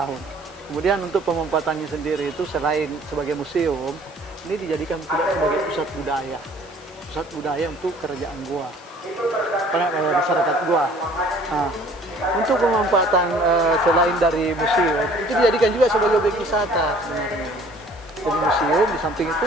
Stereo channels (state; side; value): noise; right; hiss, 28 dB below the sound